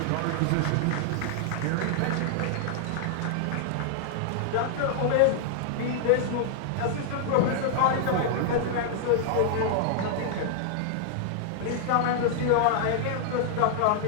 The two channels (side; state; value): both; different; correlation -0.01